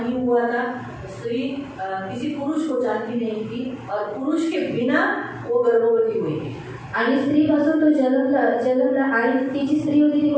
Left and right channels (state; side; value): identical; both; correlation 1.00